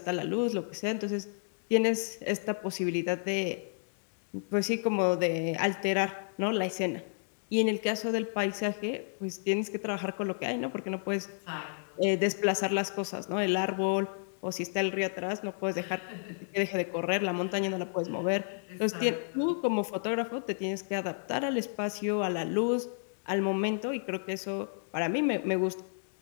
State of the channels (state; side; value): silent; right; digital silence